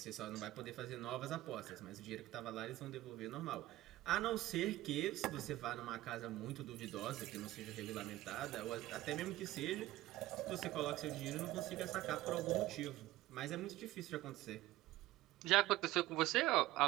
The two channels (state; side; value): quieter; left; 16.6 dB